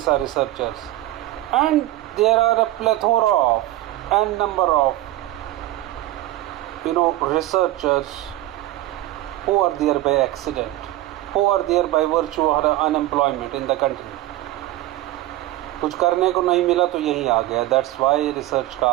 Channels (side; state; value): left; quieter; 15.7 dB